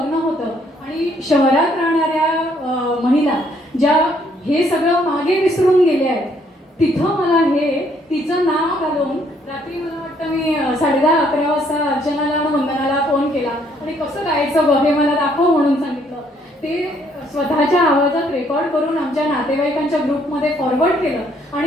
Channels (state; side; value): normal; both; correlation 0.67